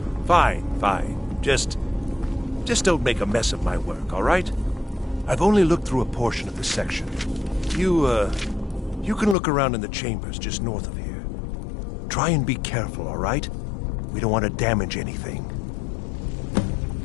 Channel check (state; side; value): drops out; right; at 9.3 s